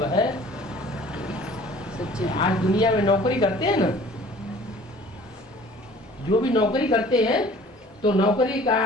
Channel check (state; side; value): normal; both; correlation 0.49